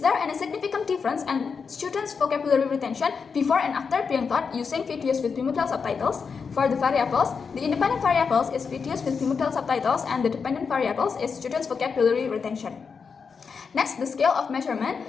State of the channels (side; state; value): right; quieter; 5.6 dB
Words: there any significant difference in students' vocabulary retention before and after being taught using videos with bimetal subtitles? For the variables, the independent variables is videos with bimetal subtitles and the dependent variables is students' vocabulary retention. Next, the scale of measurement.